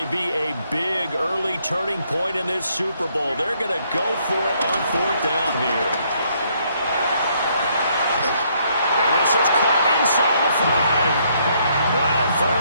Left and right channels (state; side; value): inverted; both; correlation -0.70